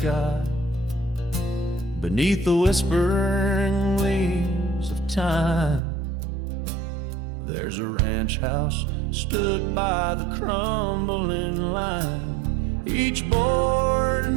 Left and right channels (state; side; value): drops out; left; at 5.8 s